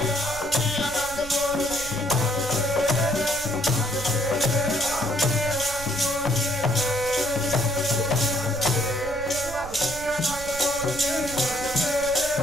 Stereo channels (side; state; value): right; noise; rumble, 13 dB below the sound